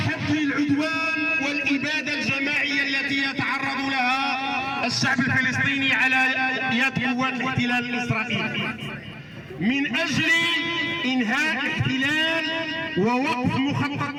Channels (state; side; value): identical; both; correlation 1.00